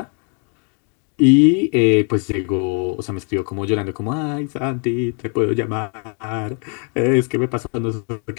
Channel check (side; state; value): right; quieter; 38.8 dB